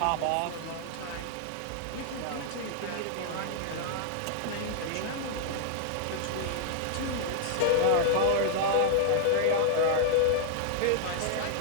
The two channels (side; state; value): both; different; correlation -0.01